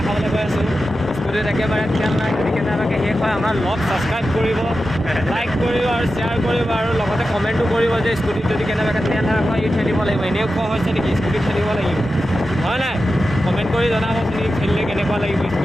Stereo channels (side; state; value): both; normal; correlation 0.92